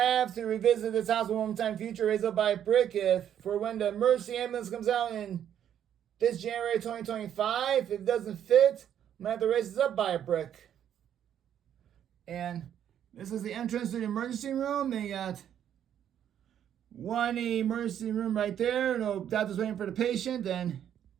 have to revisit this hospital one more time in the future, raise up by a brick for when the emergency ambulance comes out in this January 2025. If it doesn't fit, I might have to raise this up by a brick. And this is the entrance to the emergency room. They got one emergency room right there. No doctor's waiting for the patient. Then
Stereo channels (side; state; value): left; quieter; 9.8 dB